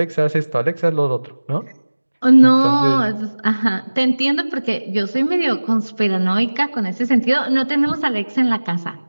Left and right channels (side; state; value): both; inverted; correlation -1.00